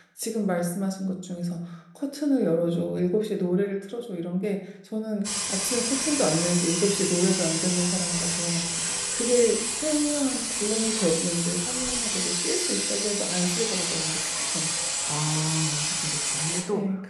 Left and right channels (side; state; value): both; identical; correlation 1.00